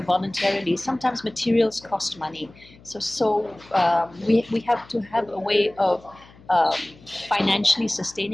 voluntarily. Sometimes materials cost money, so we have to have a way of financially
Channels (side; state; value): left; noise; hum, 24 dB below the sound